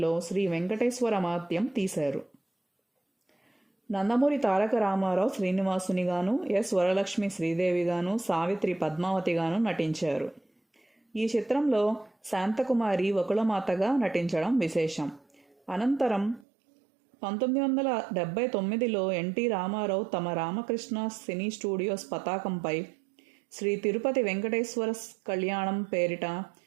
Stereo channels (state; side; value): drops out; left; at 16.4 s